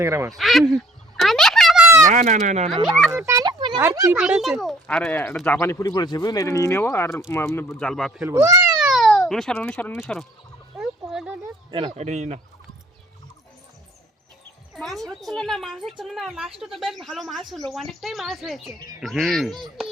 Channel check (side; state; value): both; normal; correlation 0.57